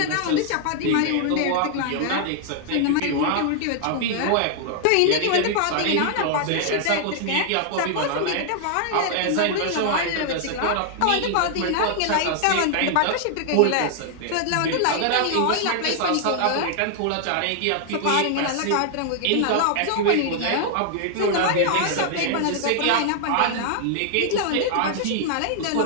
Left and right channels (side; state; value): both; different; correlation 0.00